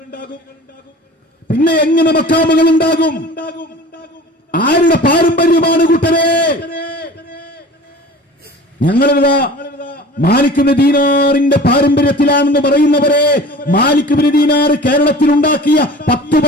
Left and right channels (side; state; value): both; normal; correlation 0.41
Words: പിന്നെ എങ്ങനെ മക്കാമുകൾ ഉണ്ടാകും? ആരുടെ പാരമ്പര്യമാണ് കൂട്ടരെ? ഞങ്ങളിതാ മാലിക് ഇബ്നു ദീനാറിന്റെ പാരമ്പര്യത്തിലാണെന്ന് പറയുന്നവരെ, മാലിക് ഇബ്നു ദീനാർ കേരളത്തിൽ ഉണ്ടാക്കിയ 10